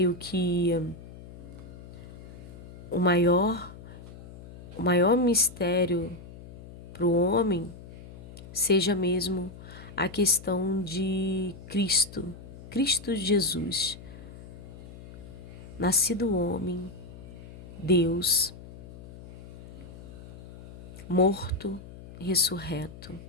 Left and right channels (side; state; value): left; noise; hum, 16 dB below the sound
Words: que o maior mistério para o homem seja mesmo a questão de Cristo Jesus, nascido homem, Deus, morto e ressurreto.